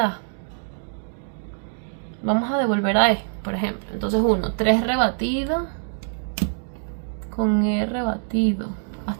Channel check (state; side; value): silent; left; digital silence